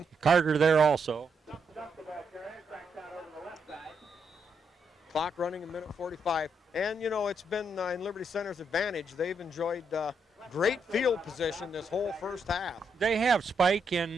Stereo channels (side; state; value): both; normal; correlation 0.78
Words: Carter there also. Clock running a minute 45. And, you know, it's been in Liberty Center's advantage. They've enjoyed great field position this whole first half. They have, Spike,